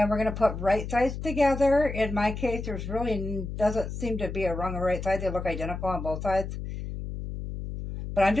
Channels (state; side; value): noise; left; hum, 7 dB below the sound